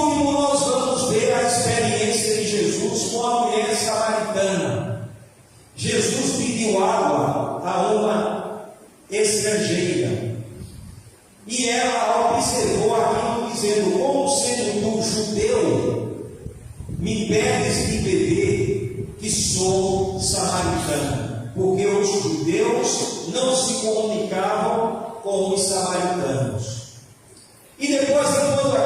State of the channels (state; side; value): identical; both; correlation 1.00